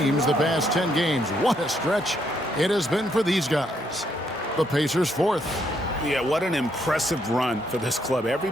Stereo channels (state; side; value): normal; both; correlation 0.74